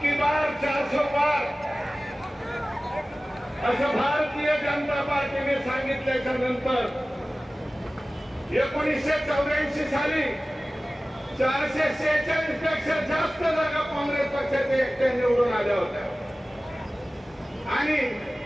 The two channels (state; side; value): normal; both; correlation 0.97